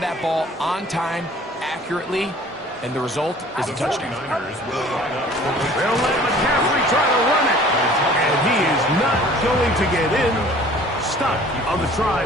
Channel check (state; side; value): normal; both; correlation 0.50